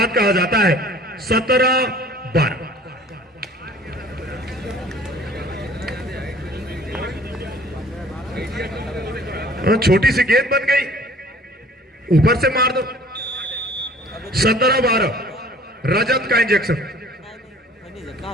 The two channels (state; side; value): normal; both; correlation 0.51